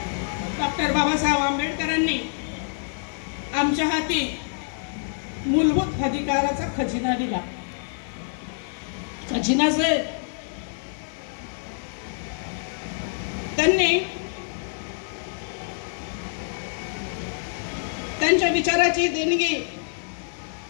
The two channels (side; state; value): right; silent; digital silence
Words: डॉक्टर बाबासाहेब आंबेडकरांनी आमच्या हाती मूलभूत अधिकाराचा खजिना दिला. खजिनाचे त्यांनी त्यांच्या विचाराची देणगी